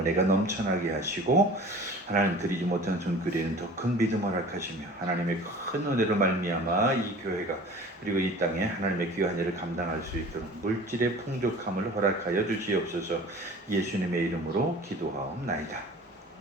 넘쳐나게 하시고 하나님 드리지 못한 손길에는 더 큰 믿음을 허락하시며 하나님의 큰 은혜로 말미암아 이 교회가 그리고 이 땅에 하나님의 귀한 일을 감당할 수 있도록 물질의 풍족함을 허락하여 주시옵소서. 예수님의 이름으로 기도하옵나이다.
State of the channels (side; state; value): both; normal; correlation 0.42